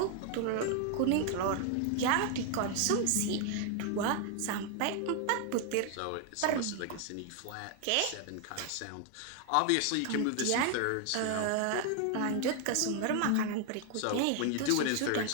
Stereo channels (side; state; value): both; different; correlation 0.00